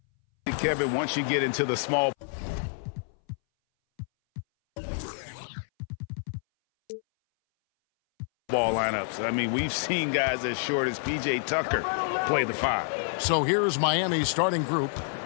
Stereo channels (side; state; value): right; silent; 59 dB below the other